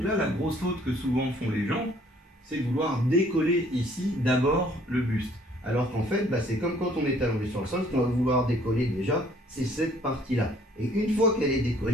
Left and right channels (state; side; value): normal; both; correlation 0.60